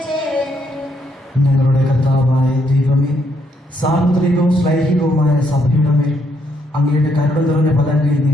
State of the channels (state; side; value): normal; both; correlation 0.73